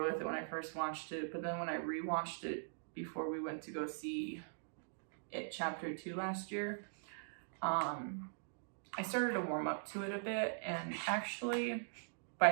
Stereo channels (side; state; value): left; silent; digital silence